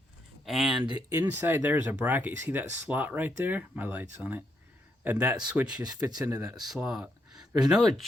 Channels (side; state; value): both; normal; correlation 0.77